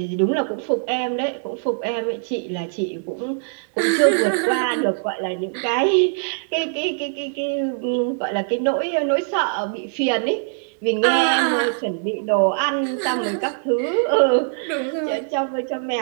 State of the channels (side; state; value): left; silent; digital silence